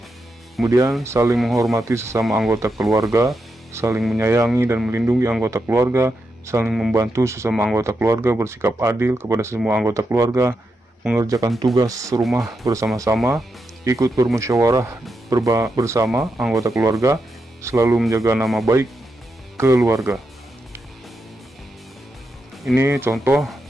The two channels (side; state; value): both; normal; correlation 0.85